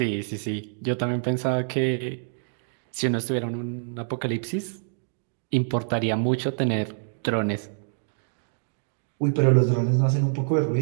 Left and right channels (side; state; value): left; silent; digital silence